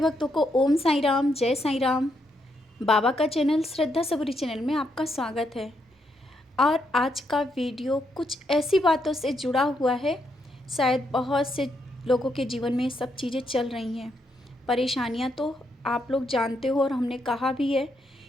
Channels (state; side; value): normal; both; correlation 0.78